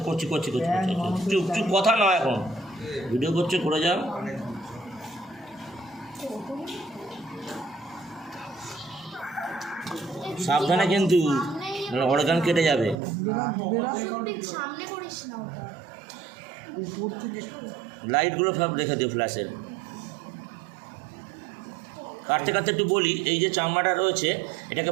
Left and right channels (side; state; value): left; drops out; at 13.0 s